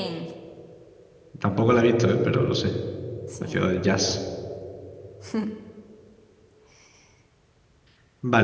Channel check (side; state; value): both; identical; correlation 1.00